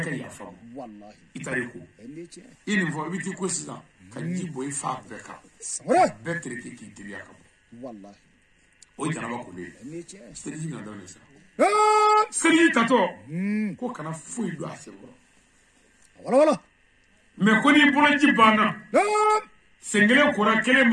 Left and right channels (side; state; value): both; identical; correlation 1.00